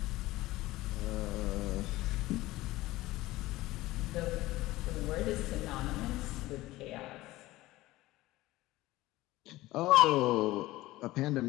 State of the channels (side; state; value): right; quieter; 18.0 dB